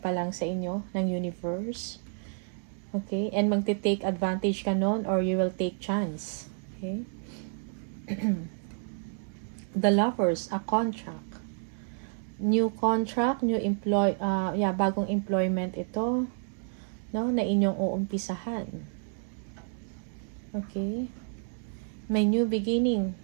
pa lang sa inyo ng universe. Okay? And magte-take advantage ka nun or you will take chance. Okay? The Lovers, a contract. New contract, bagong employment ito, no, na inyong uumpisahan. Okay? May new beginning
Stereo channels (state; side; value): silent; left; 58 dB below the other